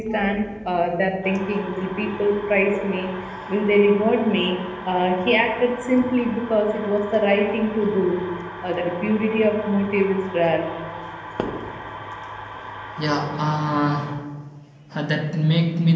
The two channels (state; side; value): identical; both; correlation 1.00